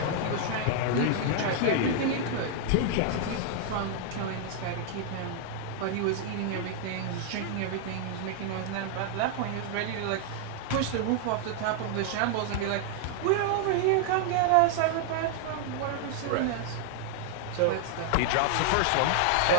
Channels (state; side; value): different; both; correlation 0.00